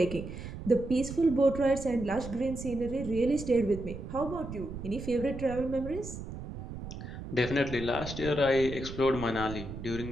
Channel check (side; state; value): right; noise; rumble, 9 dB below the sound